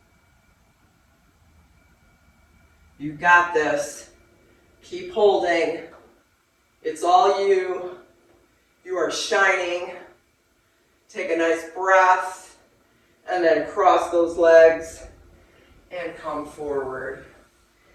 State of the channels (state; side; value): identical; both; correlation 1.00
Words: You got this. Keep holding. It's all you. You are shining. Take a nice breath, and then cross those legs and come forward.